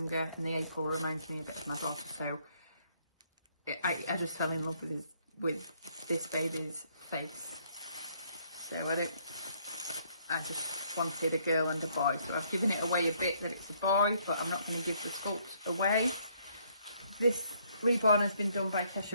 and the April reminds me a bit of my daughter. So I just fell in love with this baby's face. So I just wanted a girl and a boy. So I've given it away a bit that it's a boy, but I'm not going to give the sculpt away. This Reborn has been done by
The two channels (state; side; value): inverted; both; correlation -0.68